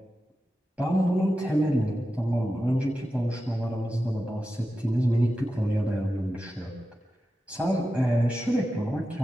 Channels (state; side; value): normal; both; correlation 0.92